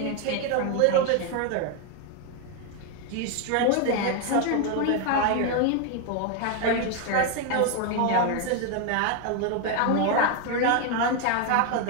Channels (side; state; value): both; different; correlation 0.01